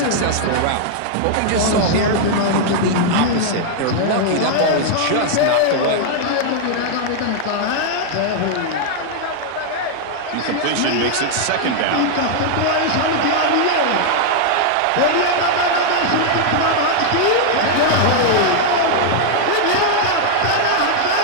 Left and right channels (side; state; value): both; different; correlation 0.00